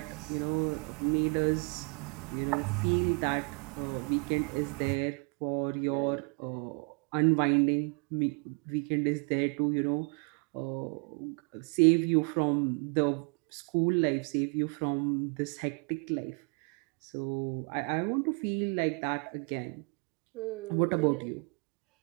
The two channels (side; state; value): left; quieter; 36.5 dB